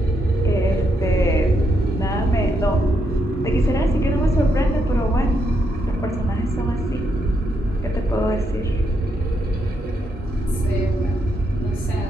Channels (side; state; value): both; normal; correlation 0.79